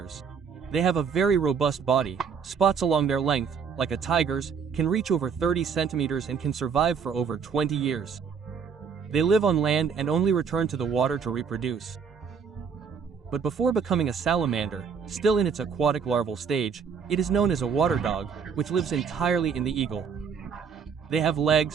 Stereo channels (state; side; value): quieter; left; 6.4 dB